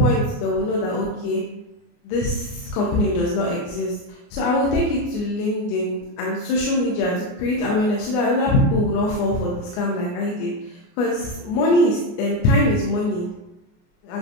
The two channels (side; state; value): right; late; 28 ms